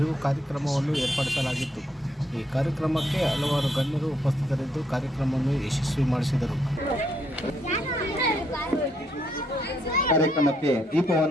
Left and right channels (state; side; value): normal; both; correlation 0.73